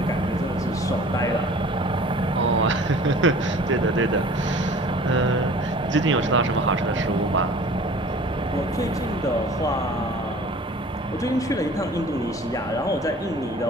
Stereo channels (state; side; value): normal; both; correlation 0.46